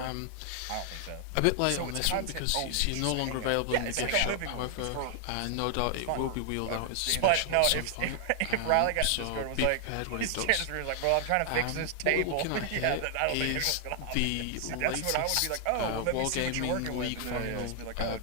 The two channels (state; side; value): different; both; correlation 0.00